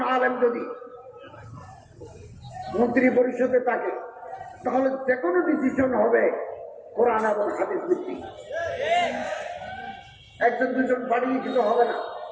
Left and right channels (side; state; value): both; identical; correlation 1.00